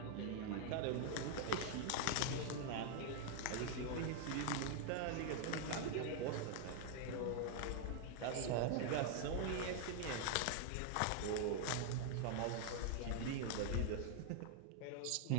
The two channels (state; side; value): different; both; correlation 0.00